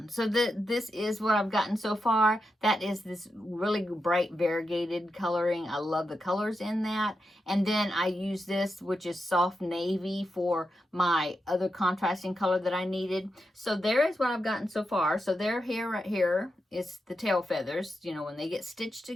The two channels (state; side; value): normal; both; correlation 0.87